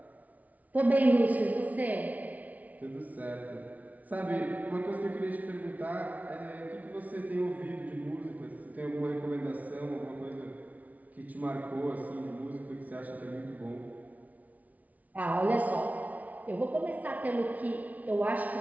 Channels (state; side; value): late; left; 0.072 ms